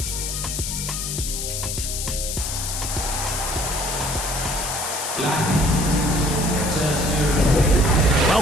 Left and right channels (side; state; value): left; noise; hiss, 4 dB below the sound